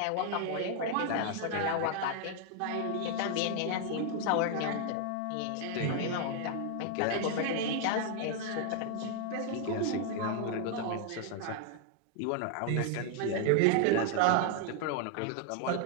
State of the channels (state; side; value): different; both; correlation 0.00